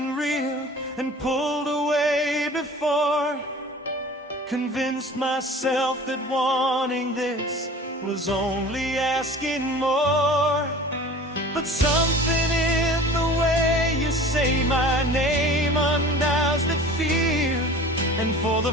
real and pulled away before, convinced myself that wanting this was only asking more. But something in the way you say my name undoes that fear, and for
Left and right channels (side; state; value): both; normal; correlation 0.42